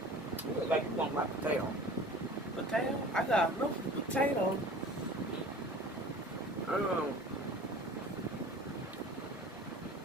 You look like you want my potato. Potato? I got enough potato.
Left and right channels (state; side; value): normal; both; correlation 0.42